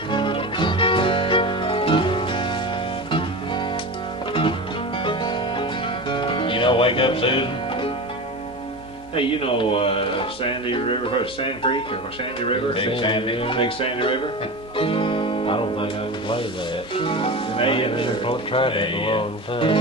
You know, wake up, Susan. Hey, you know Sandy River, or Sand Creek, or Sandy River? Big Sandy. Big Sandy River? I don't think I can play that. And I they haven't in there. tried that in a Yeah. long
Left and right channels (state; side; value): noise; right; hum, 26 dB below the sound